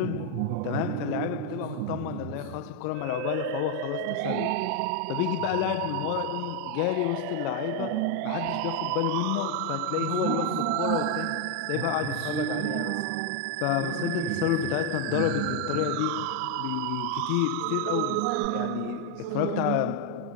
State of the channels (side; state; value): both; different; correlation 0.01